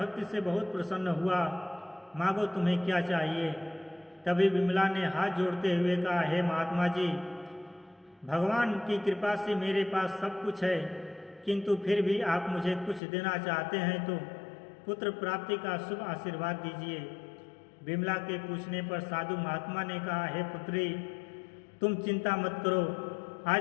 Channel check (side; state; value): right; drops out; at 13.0 s